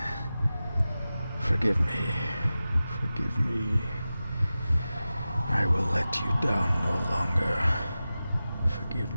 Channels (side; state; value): both; inverted; correlation -0.95